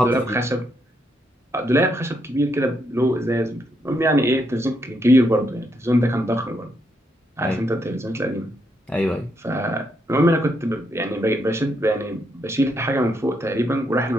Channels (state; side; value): normal; both; correlation 0.77